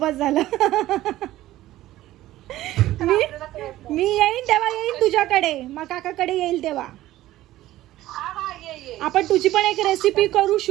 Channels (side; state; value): left; quieter; 15.3 dB